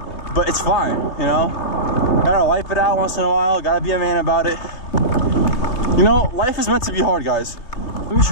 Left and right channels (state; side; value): late; right; 3.2 ms